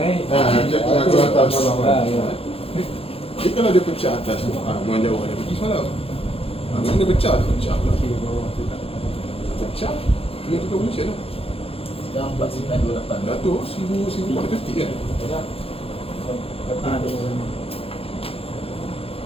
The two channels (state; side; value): late; right; 0.28 ms